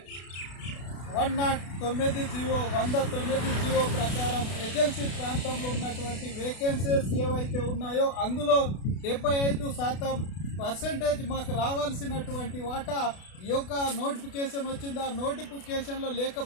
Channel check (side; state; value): right; late; 32 ms